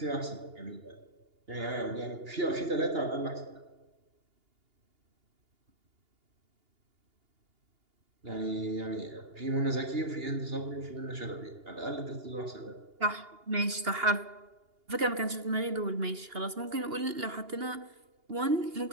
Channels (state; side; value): late; left; 2.8 ms